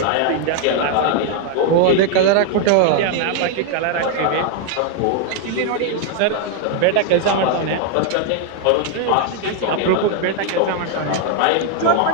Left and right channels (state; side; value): different; both; correlation 0.00